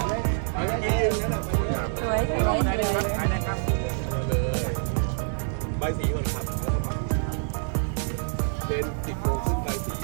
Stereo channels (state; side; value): silent; left; digital silence